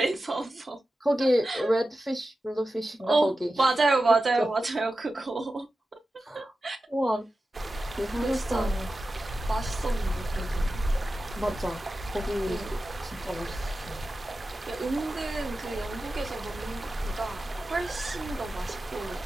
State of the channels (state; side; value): normal; both; correlation 0.93